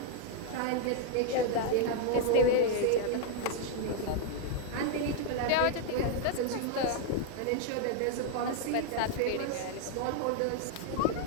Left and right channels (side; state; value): both; different; correlation 0.00